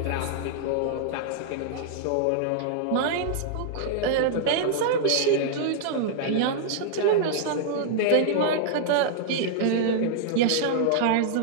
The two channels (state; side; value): different; both; correlation -0.01